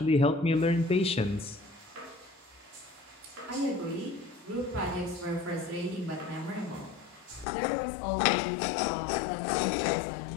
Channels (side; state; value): right; drops out; at 7.5 s